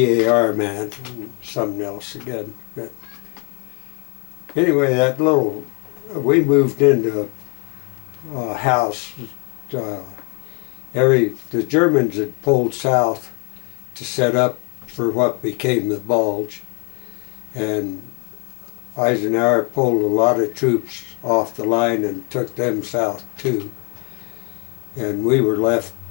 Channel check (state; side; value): quieter; right; 31.8 dB